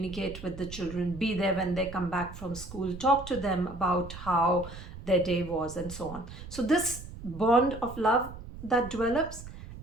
with the children, be there when they come back from school, talk to them about how their day was, and so on. So, this bond of love that develops,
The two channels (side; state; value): right; noise; rumble, 13 dB below the sound